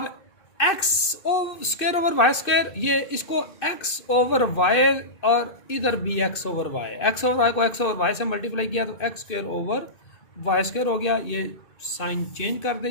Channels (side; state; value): right; late; 2.6 ms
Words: x square over y square, ये इसको एक्स ओवर वाई और इधर भी x over y, x over y को एक्स ओवर वाई से मल्टीप्लाई किया तो x square over y square हो गया। ये साइन चेंज कर